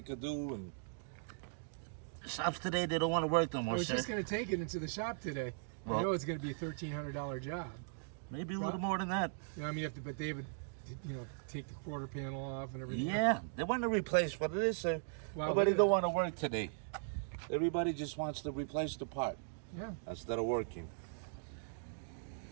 could do. And shops today, they don't want to work no I more, was sir. just gonna take it into the shop today. I Well- know it's gonna be a $1,300 job. Maybe a little more than that. You know, I mean, but they would, take the quarter panel off and everything. Yeah, they want to replace what it is, sir. Wow, Nobody look at don't that. want to work today. Everybody just wants to replace the part Yeah, instead of working.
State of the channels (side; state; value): left; silent; digital silence